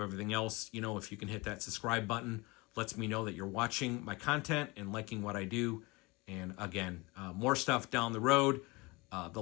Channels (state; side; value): quieter; right; 24.9 dB